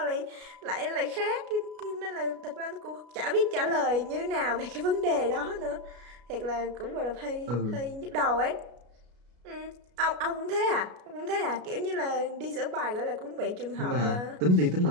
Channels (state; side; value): late; left; 33 ms